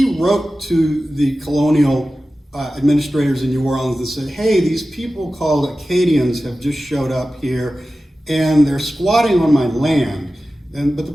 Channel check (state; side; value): normal; both; correlation 0.95